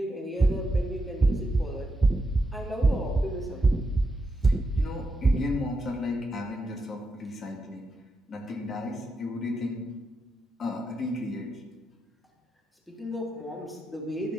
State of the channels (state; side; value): normal; both; correlation 0.85